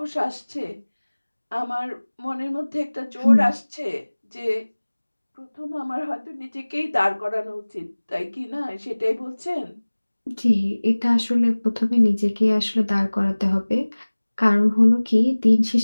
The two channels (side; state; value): both; inverted; correlation -1.00